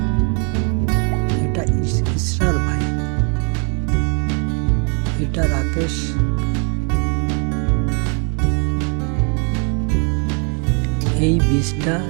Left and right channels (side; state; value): left; quieter; 38.8 dB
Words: এটা ইসরার ভাই, এটা রাকেশ, এই বীজটা